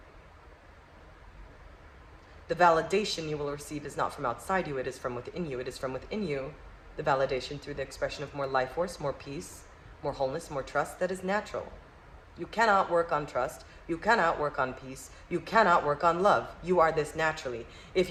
The validation you will receive is not from outside you, it is from within you. It is from within you, the validation through the expression of more life force, more peace, more wholeness, more trust that is natural. You cannot work on trust. You cannot work on peace. You cannot work on love. You are this naturally. If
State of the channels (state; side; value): identical; both; correlation 1.00